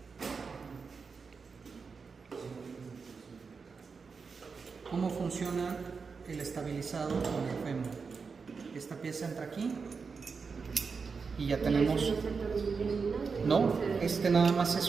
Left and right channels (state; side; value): quieter; left; 5.1 dB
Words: ¿cómo funciona el estabilizado con el fémur? Esta pieza entra aquí y ya tenemos... No, este nada más se